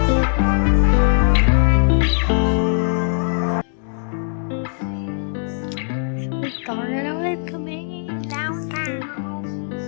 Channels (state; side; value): silent; right; digital silence